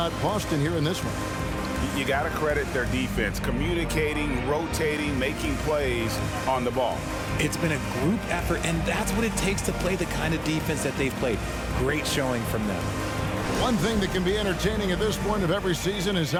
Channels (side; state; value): both; identical; correlation 1.00